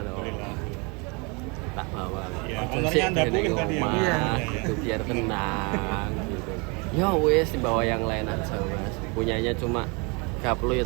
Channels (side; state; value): left; quieter; 30.3 dB